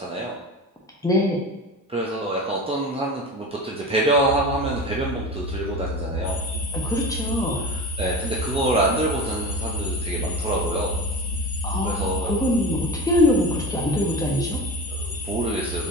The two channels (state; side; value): normal; both; correlation 0.30